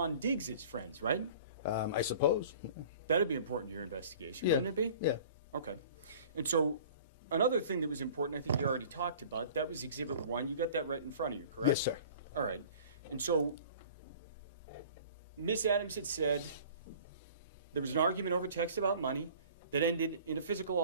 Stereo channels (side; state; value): both; inverted; correlation -0.46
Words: Diggs' friends, right? I suppose. That'd be important to your investigation, wouldn't it be? Yeah. Okay. And so another thing that was important, I think you already talked about, that was Exhibit 1. You got that right in front of you, correct? Yes, sir. All right. And so Miss Adams had said there was an argument over text about money that ended in a physical